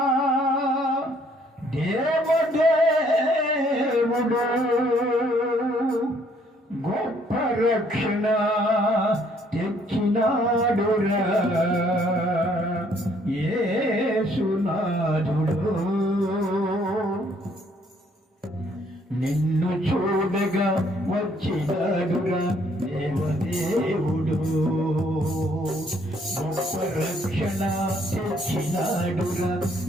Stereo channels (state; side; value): normal; both; correlation 0.65